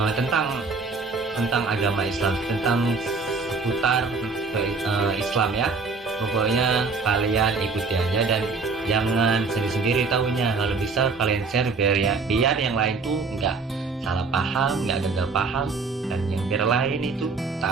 tentang agama Islam, tentang seputar Islam ya. Pokoknya kalian ikuti aja dan jangan sendiri-sendiri tahunya. Kalau bisa kalian share biar yang lain tuh nggak salah paham, nggak gagal paham, dan yang biar lain itu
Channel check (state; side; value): quieter; left; 4.3 dB